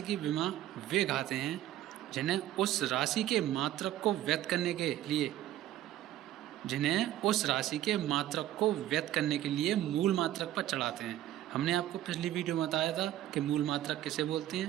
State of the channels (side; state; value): left; quieter; 13.3 dB